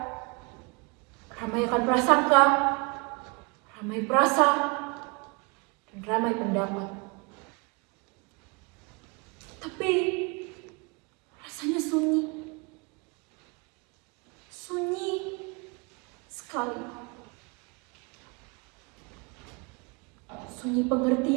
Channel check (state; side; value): quieter; left; 30.4 dB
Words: ramai akan prasangka, ramai perasa, dan ramai pendapat. Tapi rasanya sunyi. Sunyi sekali. Sunyi